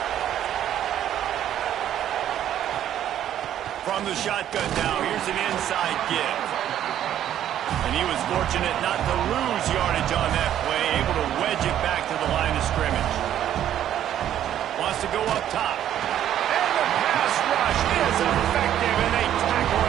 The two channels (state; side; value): quieter; left; 11.0 dB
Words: From the shotgun now, here's an inside give. And he was fortunate not to lose yardage on that play, able to wedge it back to the line of scrimmage. Wants to go up top. And the pass rush is effective, and they tackle